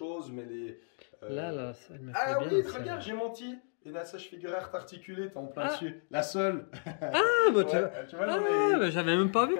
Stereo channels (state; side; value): silent; right; 56 dB below the other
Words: mais là, ça me fait bien. Oui, regarde, j'ai menti. Une assage figuraire articulée, t'es en plein dessus. La seule. Tu vois, j'avais même pas vu